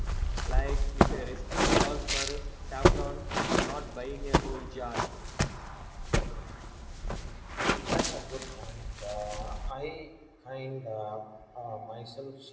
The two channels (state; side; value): identical; both; correlation 1.00